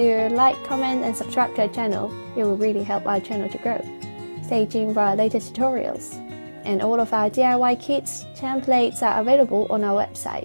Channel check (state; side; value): inverted; both; correlation -1.00